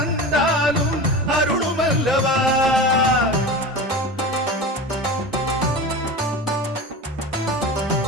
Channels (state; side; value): normal; both; correlation 0.30